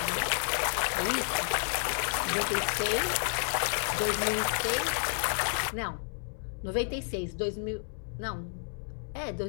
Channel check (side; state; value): right; silent; digital silence